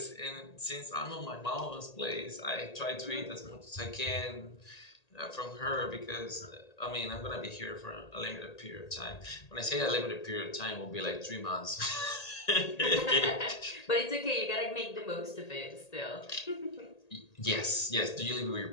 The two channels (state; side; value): late; right; 1.8 ms